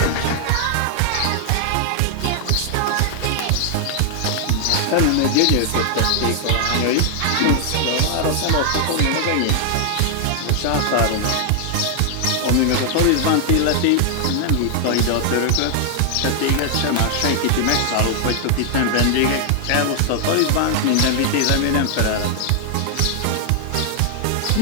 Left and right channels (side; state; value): both; different; correlation 0.00